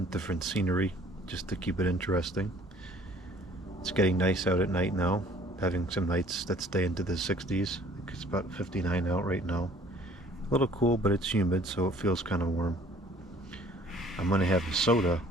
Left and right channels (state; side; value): normal; both; correlation 0.55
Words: different scenery, just to keep it interesting. It's getting nice out at night now, having some nights that stay into the 60s. I think it's about 59 out right now. A little cool, but it's humid, so it feels kind of warm. I'm going to have a soda